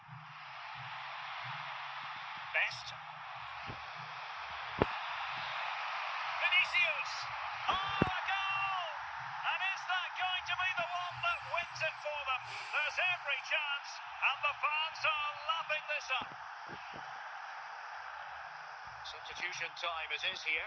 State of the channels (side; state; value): both; identical; correlation 1.00